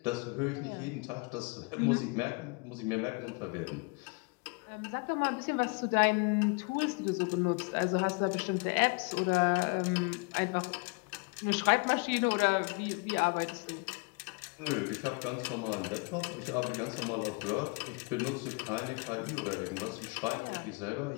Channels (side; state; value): right; quieter; 31.1 dB